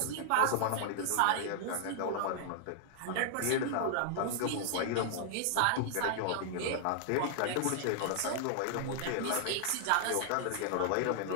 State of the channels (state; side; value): different; both; correlation -0.01